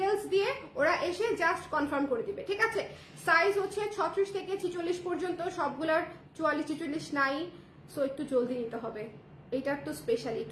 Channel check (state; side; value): identical; both; correlation 1.00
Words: দিয়ে ওরা এসে জাস্ট কনফার্ম করে দিবে। ঠিক আছে, সাইজ হচ্ছে 36 থেকে 46 পর্যন্ত, সবগুলার 44-44 নাই। সো একটু জলদি নিতে হবে, এটা একটু স্পেশালি